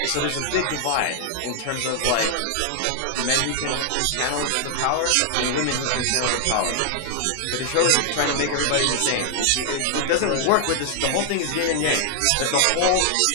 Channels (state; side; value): different; both; correlation 0.00